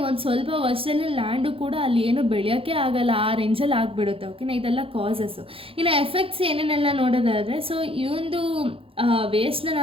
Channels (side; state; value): left; late; 0.27 ms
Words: ಒಂದು ಸ್ವಲ್ಪ ವರ್ಷದಲ್ಲಿ ಲ್ಯಾಂಡು ಕೂಡ ಅಲ್ಲಿ ಏನು ಬೆಳೆಯೋಕ್ಕೆ ಆಗಲ್ಲ, ಆ ರೇಂಜಲ್ಲಿ ಆಗಿಬಿಡುತ್ತೆ. ಓಕೆನಾ, ಇದೆಲ್ಲ ಕಾಸಸ್ಸು. ಇನ್ನು ಎಫೆಕ್ಟ್ಸ್ ಏನೇನೆಲ್ಲ ನೋಡೋದಾದರೆ, ಸೊ ಈ ಒಂದು ವೇಸ್ಟ್ನ